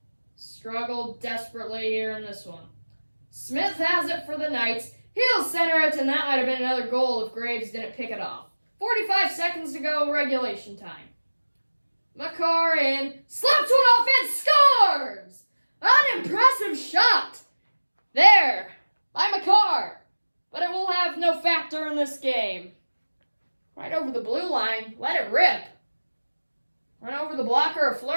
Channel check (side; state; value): both; inverted; correlation -1.00